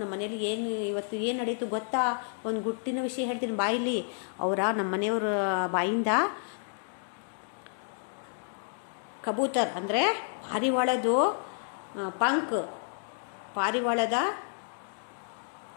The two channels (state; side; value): silent; right; digital silence